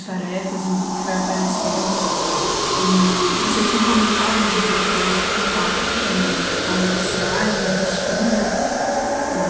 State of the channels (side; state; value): both; identical; correlation 1.00